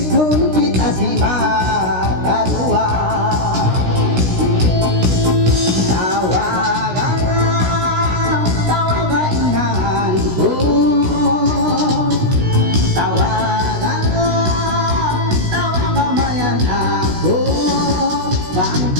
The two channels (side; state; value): left; late; 16 ms